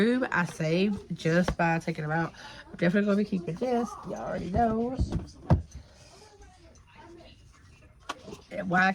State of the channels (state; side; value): identical; both; correlation 1.00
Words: I saved just by taking them out. I'm definitely going to be keeping this. Y'all already know. And why I